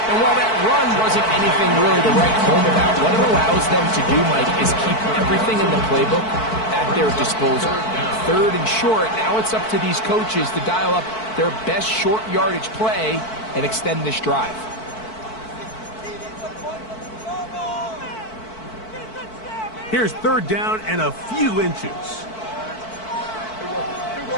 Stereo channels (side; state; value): right; late; 4.5 ms